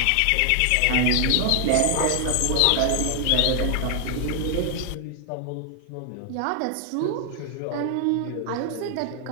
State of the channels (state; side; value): different; both; correlation 0.00